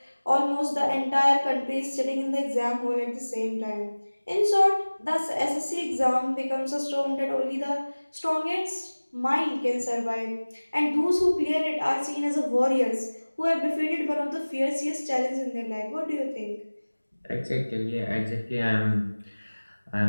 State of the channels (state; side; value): inverted; both; correlation -1.00